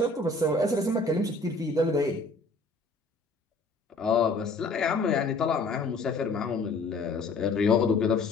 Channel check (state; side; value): quieter; right; 3.4 dB